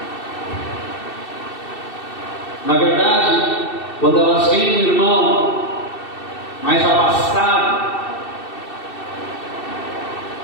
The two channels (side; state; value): right; late; 2.7 ms